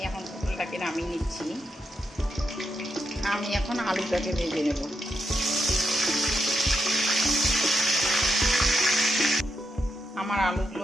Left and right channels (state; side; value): normal; both; correlation 0.83